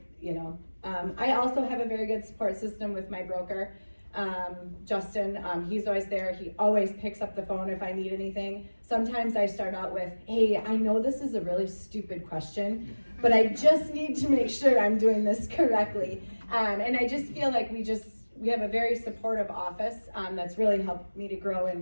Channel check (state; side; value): inverted; both; correlation -1.00